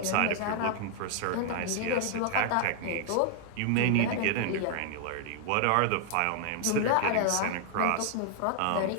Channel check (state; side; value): different; both; correlation 0.00